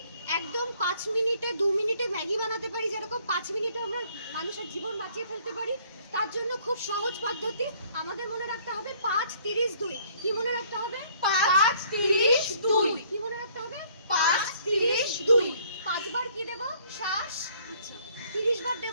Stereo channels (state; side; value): inverted; both; correlation -0.61